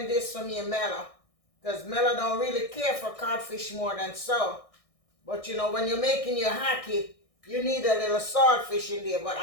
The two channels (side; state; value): right; late; 1.6 ms